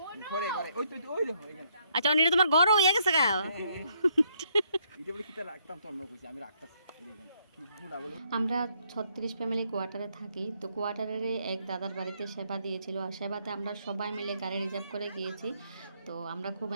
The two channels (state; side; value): inverted; both; correlation -0.71